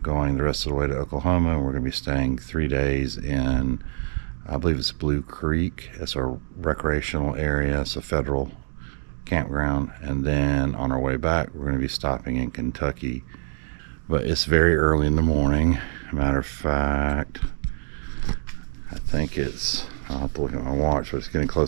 going the rest of the way to Oklahoma, and we're going to be staying 3 days in, I believe it's Blue Creek. It's a recreational area. It's a federal campground. And then on our way back, we're going to be stopping in Kentucky. But it's very early in the morning. Matter of fact, I think I'll have to look at my watch, but it's getting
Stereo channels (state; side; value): silent; left; digital silence